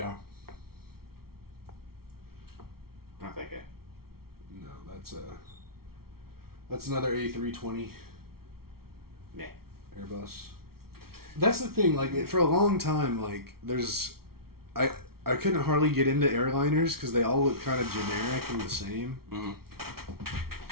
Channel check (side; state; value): left; late; 0.94 ms